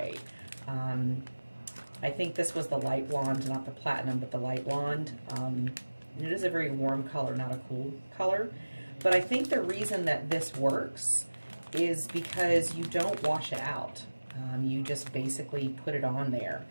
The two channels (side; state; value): both; inverted; correlation -1.00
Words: I think this was the light blonde, not the platinum, but the light blonde. It is a very warm color, not a cool color. But I think the reason that this works is because you don't wash it out. You just basically put it on there.